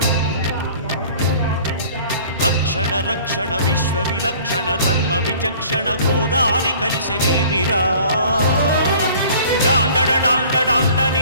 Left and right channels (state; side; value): inverted; both; correlation -0.49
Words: రక్షణ రక్షణ విశ్వ విలక్షణ ధర్మ విచక్షణ గోదారి కలిసెనేమిరా డాండడ డాండ డాండ